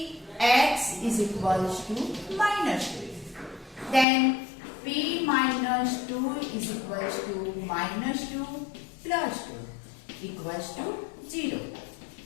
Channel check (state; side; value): drops out; right; at 4.0 s